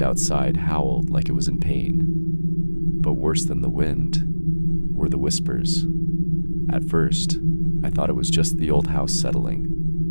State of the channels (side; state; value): both; inverted; correlation -1.00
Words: outside howled like it was in pain. But worse than the wind were the whispers. At first, I thought it was just the old house settling,